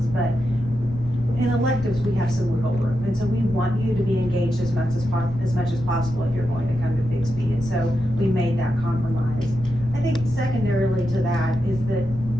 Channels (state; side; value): noise; left; rumble, 11 dB below the sound